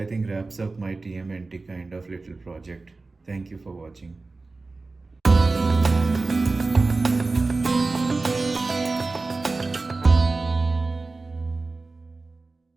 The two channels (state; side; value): quieter; left; 3.6 dB